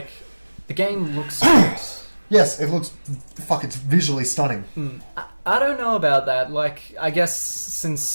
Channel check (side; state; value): both; inverted; correlation -1.00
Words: the game looks good. Yes, it looks... Fuck, it's visually stunning. I don't know about that. Like, I guess